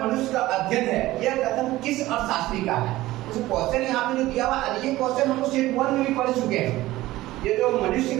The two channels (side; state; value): left; quieter; 17.0 dB